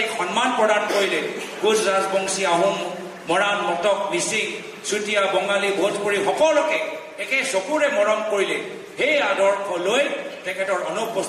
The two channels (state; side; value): identical; both; correlation 1.00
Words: সন্মান প্ৰদান কৰিলে, কোচ ৰাজবংশী, আহোম, মৰাণ, মটক, মিচিং, চুতীয়া, বঙালী, ভোজপুৰী সকলোকে একে চকুৰে মৰম কৰিলে, সেই আদৰ্শ লৈ তেখেতৰ